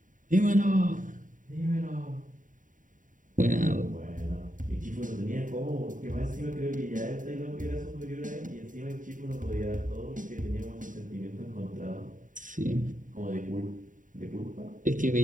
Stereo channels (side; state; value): left; late; 0.38 ms